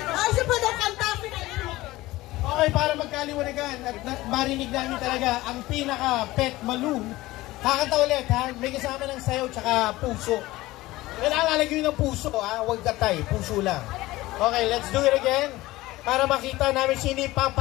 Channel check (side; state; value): right; quieter; 18.3 dB